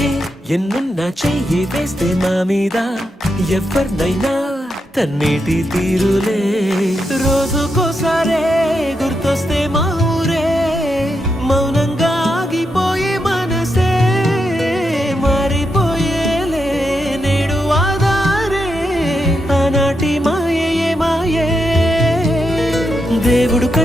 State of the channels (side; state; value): both; normal; correlation 0.84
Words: ఎన్నున్నా చెయ్యి వేస్తే మా మీద ఎవరినైనా తన్నేటి తీరులే రోజుకోసారే గుర్తొస్తే మా ఊరే మౌనంగా ఆగిపోయే మనసే మారిపోయేలే నేడు ఆధారే ఆనాటి మాయే మాయే దేవుడు